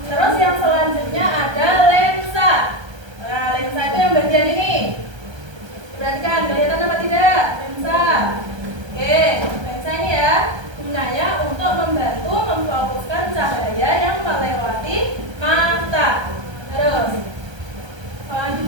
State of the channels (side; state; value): left; late; 1.3 ms